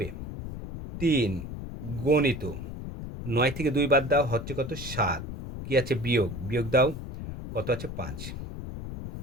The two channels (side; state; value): left; noise; rumble, 8 dB below the sound